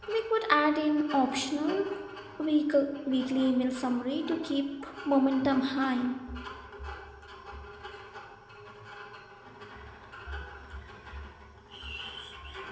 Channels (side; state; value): both; identical; correlation 1.00